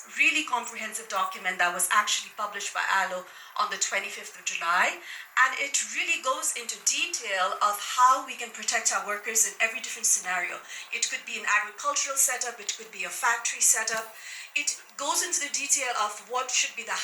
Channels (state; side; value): identical; both; correlation 1.00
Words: really comprehensive document that was actually published by ILO on the 25th of July. And it really goes into detail of how we can protect our workers in every different scenario. It could be an agricultural setup, it could be a factory setup. It goes into the detail of what should be the